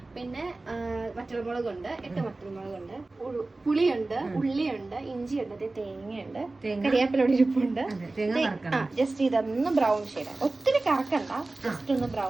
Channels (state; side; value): quieter; left; 3.2 dB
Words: പിന്നെ വറ്റൽമുളകുണ്ട്, 8 വറ്റൽമുളകുണ്ട്, പുളിയുണ്ട്, ഉള്ളിയുണ്ട്, ഇഞ്ചിയുണ്ട്, തേങ്ങയുണ്ട്, കരിയാപ്പിലോട് ഇരിപ്പുണ്ട്. ജസ്റ്റ് ഇതൊന്ന് ബ്രൗൺ ഷെയ്ഡ്, ഒത്തിരി കറക്കണ്ട, ജസ്റ്റ് ഒന്ന്